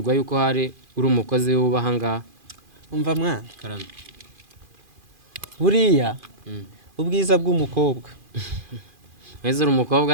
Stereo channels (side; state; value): left; late; 2.4 ms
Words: yuko hari uri umukozi w'ubahangaha. Umva mwana. Karame. Buriya ubwiza bw'umukobwa. Weze uri